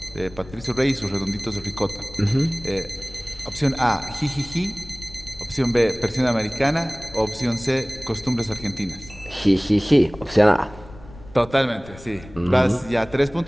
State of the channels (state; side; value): noise; left; rumble, 19 dB below the sound